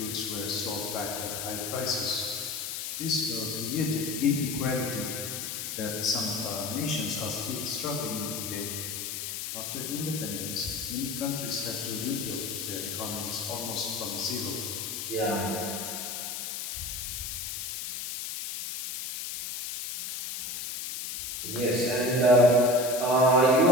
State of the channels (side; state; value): left; noise; hiss, 5 dB below the sound